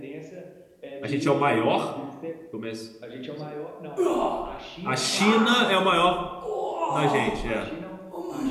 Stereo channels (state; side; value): identical; both; correlation 1.00